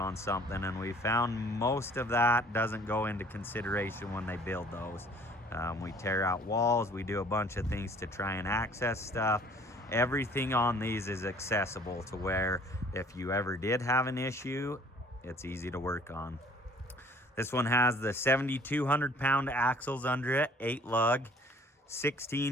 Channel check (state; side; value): normal; both; correlation 0.54